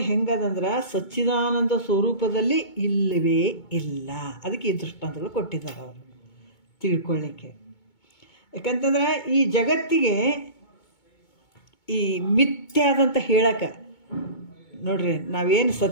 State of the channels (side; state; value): right; late; 2.2 ms